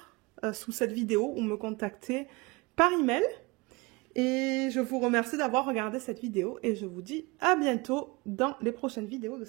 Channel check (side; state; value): left; quieter; 25.5 dB